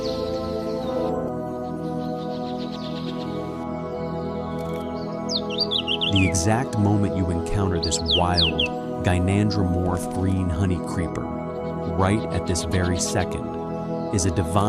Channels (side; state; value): both; identical; correlation 1.00